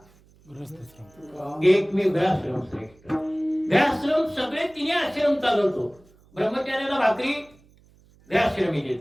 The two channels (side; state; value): right; noise; hum, 29 dB below the sound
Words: एकमेव ग्रहाश्रम श्रेष्ठ. ग्रहाश्रम सगळे तिने आश्रम चालवतो. ब्रह्मचार्याला भाकरी ग्रहाश्रमी